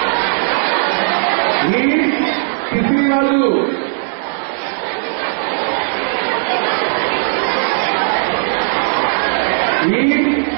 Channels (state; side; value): silent; left; 69 dB below the other